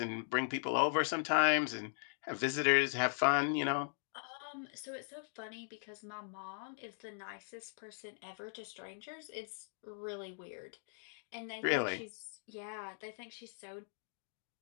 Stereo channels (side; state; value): right; silent; digital silence